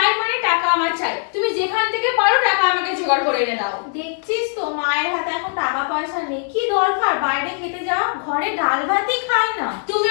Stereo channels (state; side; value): silent; right; 56 dB below the other